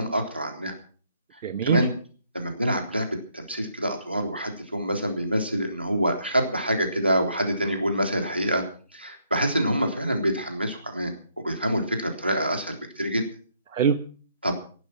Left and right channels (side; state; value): both; inverted; correlation -0.71